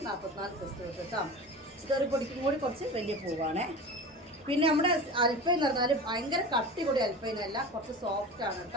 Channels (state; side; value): normal; both; correlation 0.32